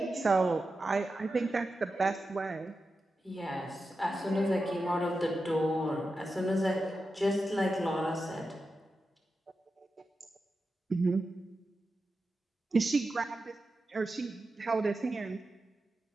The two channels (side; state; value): both; normal; correlation 0.91